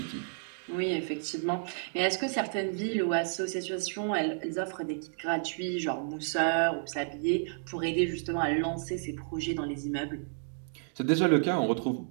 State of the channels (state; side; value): silent; left; digital silence